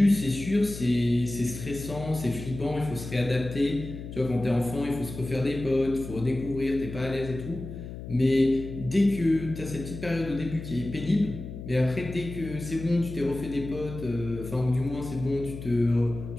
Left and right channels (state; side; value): noise; left; hum, 10 dB below the sound